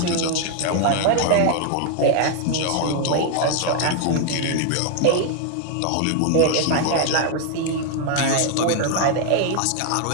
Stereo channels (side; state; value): both; different; correlation 0.00